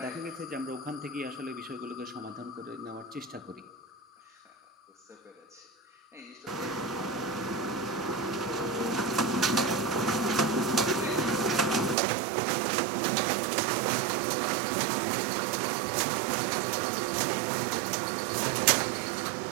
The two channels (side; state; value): left; drops out; at 12.0 s